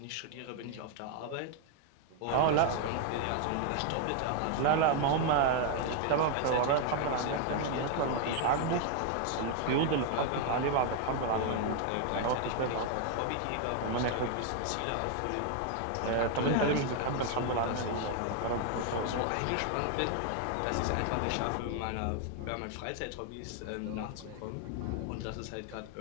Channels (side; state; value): both; different; correlation 0.00